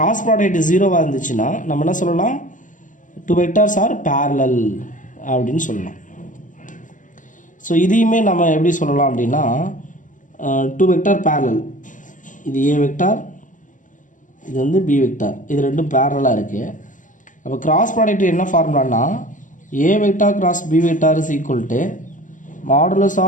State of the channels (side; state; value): right; late; 0.37 ms